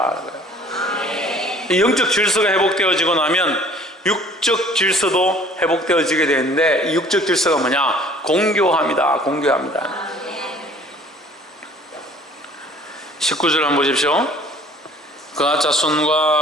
영적 질서가 회복되어지고 나면 육적 질서도 회복되어지게 되는데 이 육적 질서가 뭐냐? 공교합니다. 공교합니다. 19절 한번 보십시오. 그앗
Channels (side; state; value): both; normal; correlation 0.52